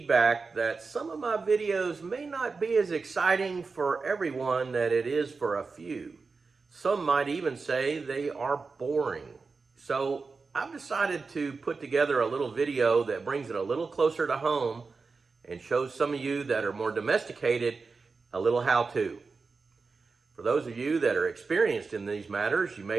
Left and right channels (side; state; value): left; quieter; 4.4 dB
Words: that some of my videos may not be as exciting for everyone that it is for a few. Some might even say they are boring. So I've decided to put together a little video that brings it a little closer to home and shows some of you that are more domesticated a little how-to. For those of you that are experienced in these matters, you